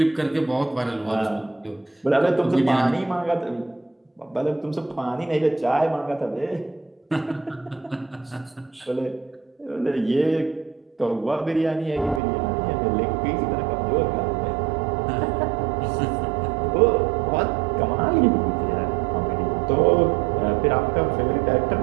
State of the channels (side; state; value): left; drops out; at 12.2 s